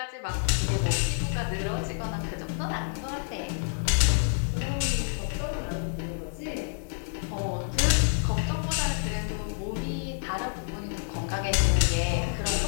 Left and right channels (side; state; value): right; silent; digital silence